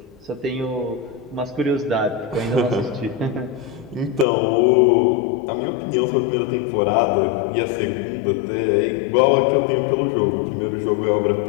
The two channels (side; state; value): right; drops out; at 4.2 s